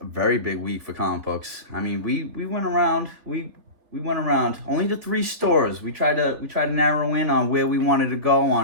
a very big week for comic books. I mean, we went around, we went around only to 3 stores. We tried to narrow in on where we wanted to go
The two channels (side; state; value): left; late; 3.4 ms